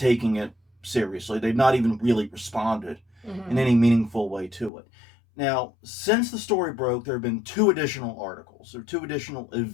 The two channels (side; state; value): right; drops out; at 4.7 s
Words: it seriously. They've not even really responded in any meaningful way to it. Now, since the story broke, there have been 2 additional articles, or 2 additional